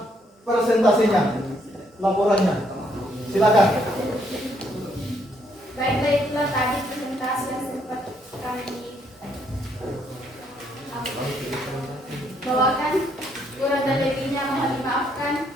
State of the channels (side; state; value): both; normal; correlation 0.71